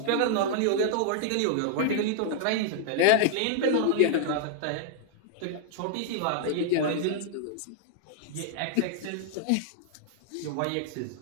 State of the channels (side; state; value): both; different; correlation -0.01